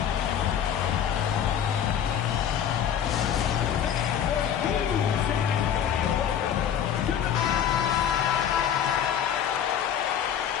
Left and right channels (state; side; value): quieter; right; 9.1 dB